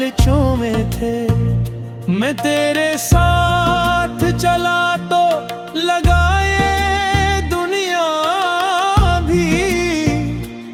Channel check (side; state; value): both; identical; correlation 1.00